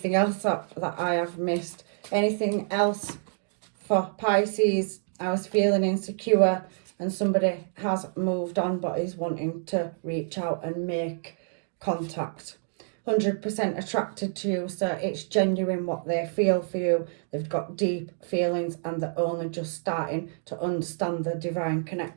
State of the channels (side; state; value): left; silent; digital silence